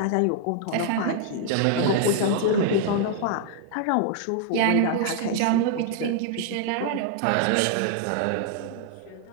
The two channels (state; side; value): different; both; correlation 0.00